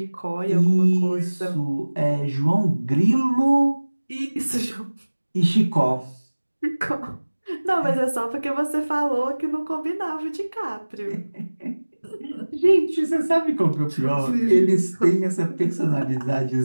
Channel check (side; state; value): both; inverted; correlation -1.00